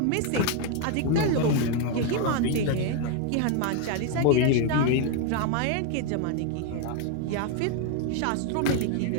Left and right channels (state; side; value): different; both; correlation 0.01